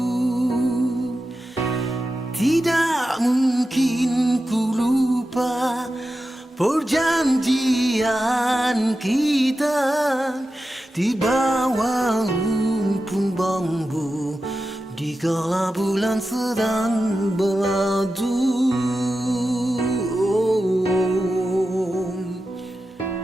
Tidak mungkin ku lupa perjanjian kita di bawah rumpun bambu dikala bulan sedang beradu.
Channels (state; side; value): normal; both; correlation 0.91